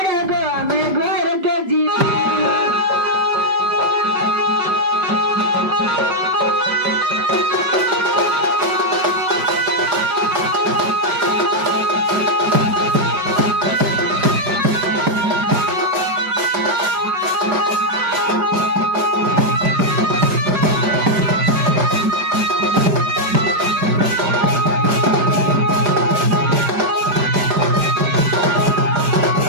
मैं घर के जीमू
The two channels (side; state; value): left; late; 5.1 ms